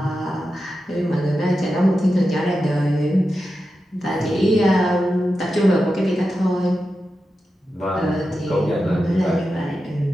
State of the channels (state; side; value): normal; both; correlation 0.90